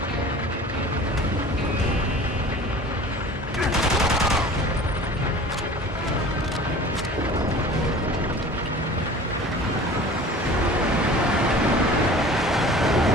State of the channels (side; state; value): both; normal; correlation 0.42